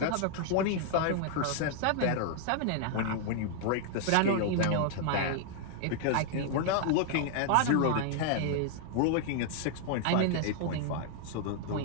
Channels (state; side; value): different; both; correlation 0.00